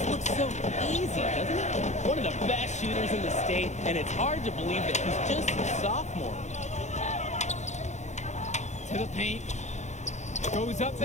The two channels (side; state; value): right; late; 0.34 ms